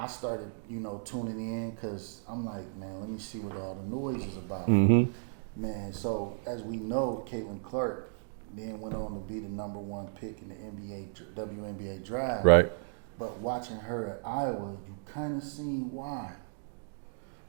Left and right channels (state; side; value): silent; left; digital silence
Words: started, tuning in because I'm like, man, let me see what all the noise is about. Man, so as we know, CAITLAN CLARK then went on to be the #1 pick in the WNBA draft. Right. But watching her at Iowa, you kind of seen why.